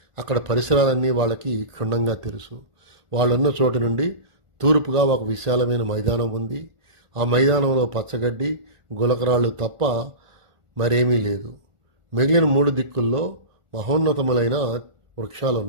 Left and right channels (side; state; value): left; late; 1.4 ms